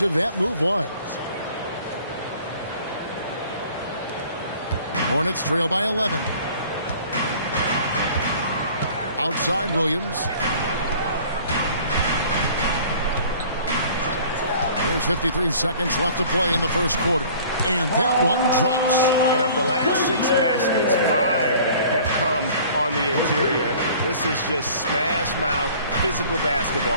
that move was. Hornets trail by 11. Outside Williams. There's 53 seconds left to play in the first quarter. And that one drops. And of the last 6 baskets, 5 have come on the interior. This is just smash mouth physical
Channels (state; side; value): inverted; both; correlation -0.49